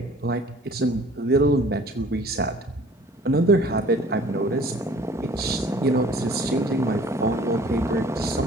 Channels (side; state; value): both; normal; correlation 0.51